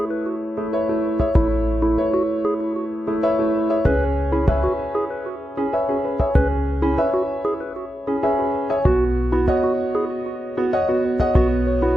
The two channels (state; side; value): normal; both; correlation 0.89